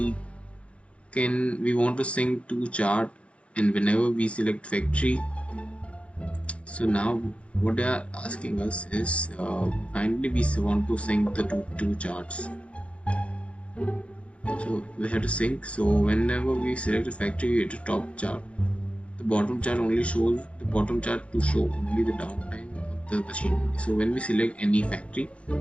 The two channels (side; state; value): right; late; 0.061 ms